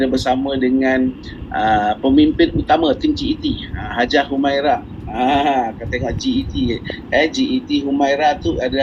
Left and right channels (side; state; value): both; identical; correlation 1.00